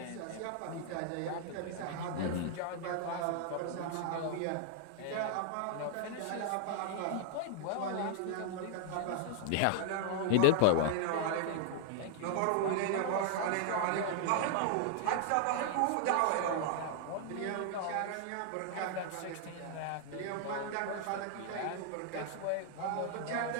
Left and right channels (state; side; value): different; both; correlation -0.01